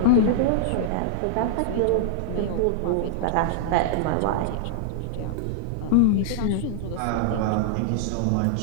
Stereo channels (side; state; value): both; different; correlation -0.01